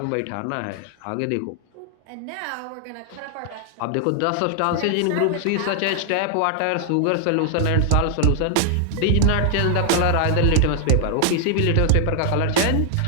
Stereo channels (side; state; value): both; different; correlation 0.00